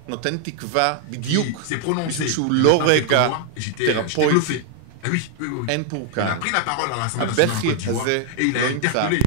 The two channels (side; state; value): both; different; correlation 0.00